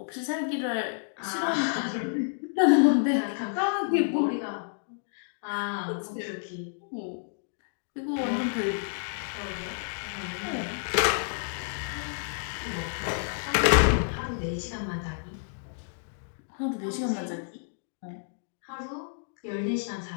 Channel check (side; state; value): right; silent; digital silence